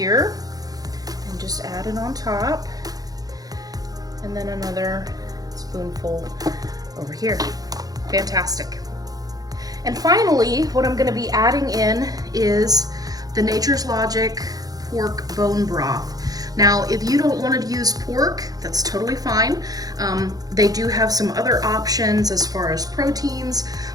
and just add it on top, and then another spoonful over here. Fantastic. And finally, what I'm gonna be adding in is the Nature's Logic pork bone broth. Now, if you don't want to use pork, that's totally fine. They do have some other options as far as proteins,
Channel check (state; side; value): late; left; 0.18 ms